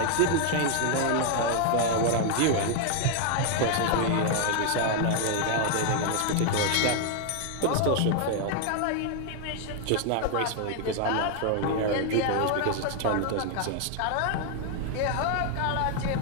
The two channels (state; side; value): different; both; correlation 0.00